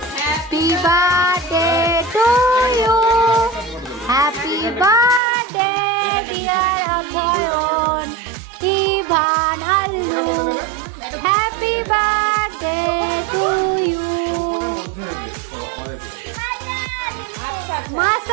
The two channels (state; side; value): drops out; left; at 5.2 s